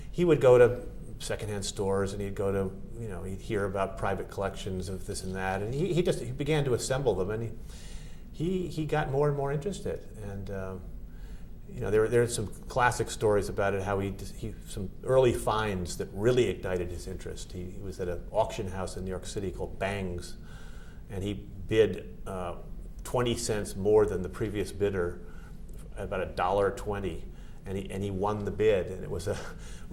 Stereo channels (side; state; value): both; identical; correlation 1.00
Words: he would go to secondhand stores, and he'd go to, he'd hear about private collections of this and that, and he began to assemble them, and he got more and more interested, and there are some classic stories about it, how he some early finds that really ignited his interest. He was at an auction house in New York City called Bang's, and he bid 20 cents more than the previous bidder, about $1.20, and he won the bid, and it was